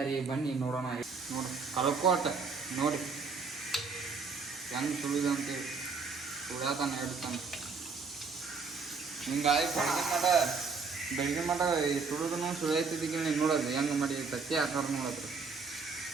ಬನ್ನಿ ನೋಡೋಣ. ನೋಡಿ ಕಲ್ಕೋಟ ನೋಡಿ ಹೆಂಗೆ ಸುಳಿದ ಅಂತೇಳಿ ಸುಳ್ಯಾತಾನೆ ಹೇಳ್ತಾನೆ. ಹಿಂಗಾಗಿ ಬೆಳಗ್ಗೆ ಮಾಡ ಸುಳಿದನು ಸುಳಿಯತ್ತಿದ್ದೀವಿ ನೋಡೋದು ಹೆಂಗೆ ಮಾಡಿ ತತ್ತಿ ಹಾಕೋರು ನೋಡೋದು.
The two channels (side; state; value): left; quieter; 4.8 dB